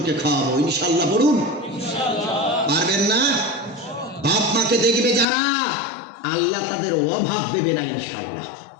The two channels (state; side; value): drops out; right; at 5.2 s